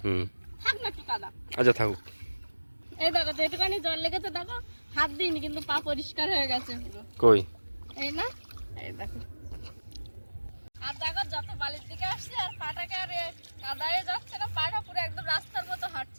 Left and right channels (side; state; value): both; inverted; correlation -1.00